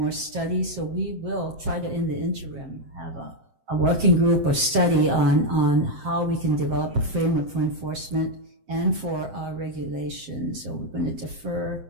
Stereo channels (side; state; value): left; late; 7.7 ms